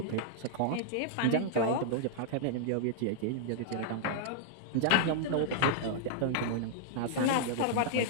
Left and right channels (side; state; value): both; different; correlation -0.01